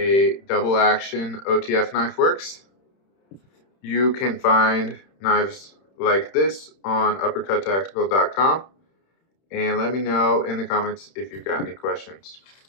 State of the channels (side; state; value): right; late; 31 ms